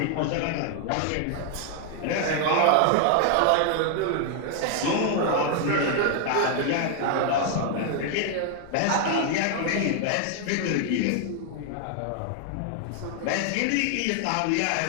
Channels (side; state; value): both; different; correlation 0.00